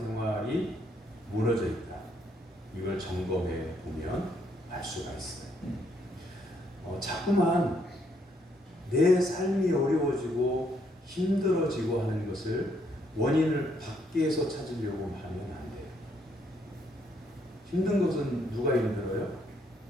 무너져 있다. 이걸 점검해 보면 알 수가 있어요. 자꾸만 내 삶이 어려워지고 힘들어지고 하는 것을 원인을 밖에서 찾으려고 하면 안 돼요. 힘든 것은 누가 힘들어요?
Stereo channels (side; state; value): both; normal; correlation 0.72